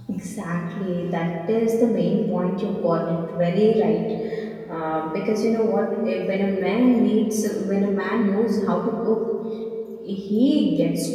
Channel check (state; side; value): identical; both; correlation 1.00